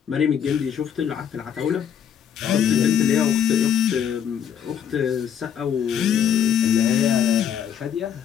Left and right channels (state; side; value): quieter; right; 8.5 dB